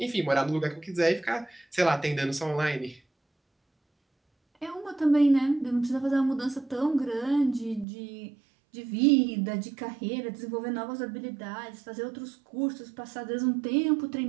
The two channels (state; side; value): drops out; left; at 7.9 s